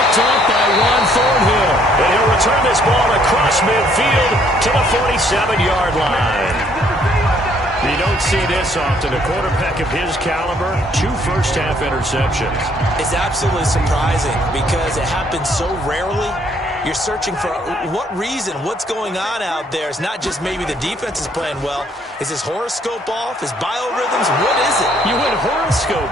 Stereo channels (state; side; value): normal; both; correlation 0.65